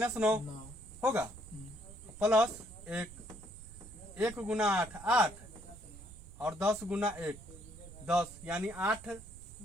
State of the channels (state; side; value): noise; right; rumble, 16 dB below the sound